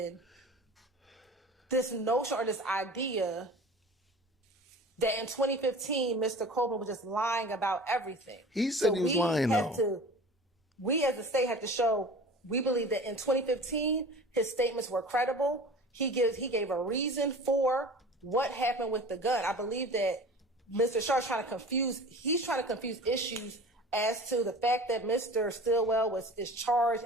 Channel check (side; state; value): both; normal; correlation 0.39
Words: this notion or this idea that in 2015, Mr. Copeland was just lying about everything. He said he was lying, though. We as a state have to show, we believe that in 2015, his statements were credible. He gave a reason for what happened with the gun. I believe that Mr. Sharp's trying to confuse issues as to the fact that Mr. Stillwell is charged